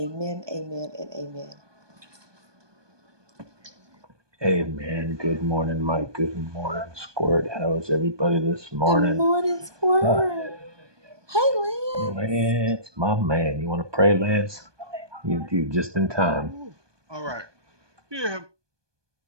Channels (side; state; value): left; late; 1.2 ms